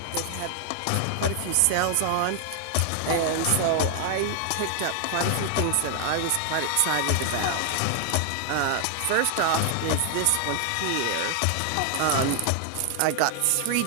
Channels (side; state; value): both; different; correlation 0.00